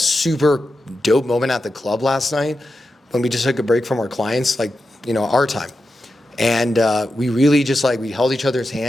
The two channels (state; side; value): normal; both; correlation 0.90